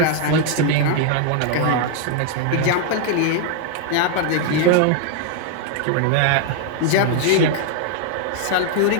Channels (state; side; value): different; both; correlation 0.00